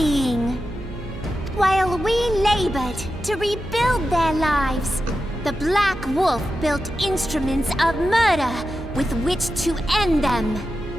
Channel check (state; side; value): noise; right; hum, 12 dB below the sound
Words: While we labored to rebuild their lives, the Black Wolf built instruments of murder with which to end them.